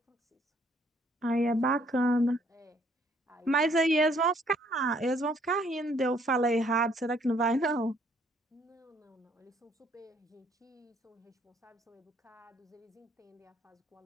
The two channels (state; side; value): normal; both; correlation 0.65